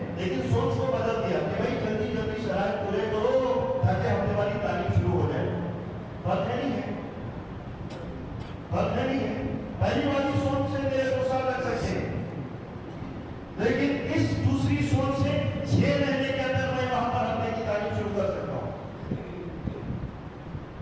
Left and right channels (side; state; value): both; identical; correlation 1.00